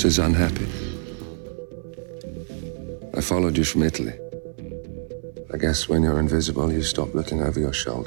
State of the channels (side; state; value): left; silent; 58 dB below the other